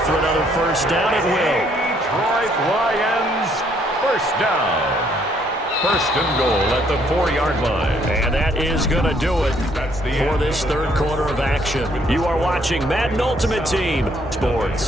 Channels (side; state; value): both; normal; correlation 0.67